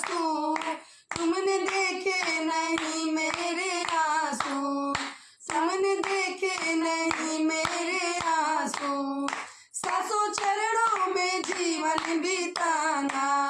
तुमने देखे नहीं मेरे आंसू, तुमने देखे नहीं मेरे आंसू। सासू चरणों में जीवन बिताना,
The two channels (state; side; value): identical; both; correlation 1.00